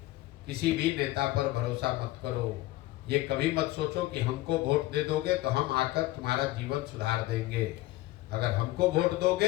किसी भी नेता पर भरोसा मत करो। ये कभी मत सोचो कि हमको वोट दे दोगे तो हम आकर तुम्हारा जीवन सुधार देंगे। अगर हमको वोट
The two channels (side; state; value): right; quieter; 17.8 dB